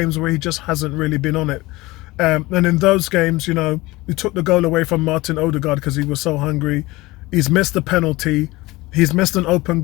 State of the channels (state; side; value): quieter; right; 20.6 dB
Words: where he just hasn't really been on it. And in those games, we took the goal away from Martin Odegaard because he was so hungry. He's missed a penalty. He's missed an open